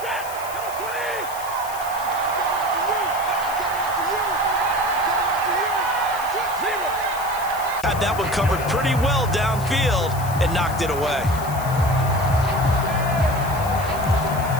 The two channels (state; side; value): noise; left; hiss, 14 dB below the sound